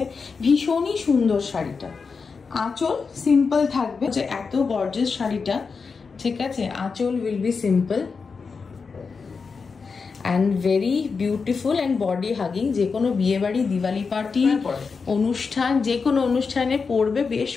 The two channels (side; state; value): right; quieter; 5.0 dB